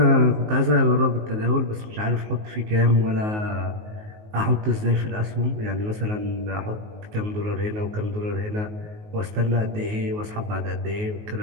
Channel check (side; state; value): left; late; 19 ms